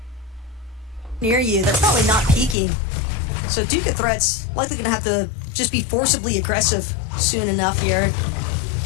Near you, they're probably not peaking. So Duke of Threats likely gonna have to just be forcibly aggressive soon enough here.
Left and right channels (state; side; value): drops out; right; at 2.6 s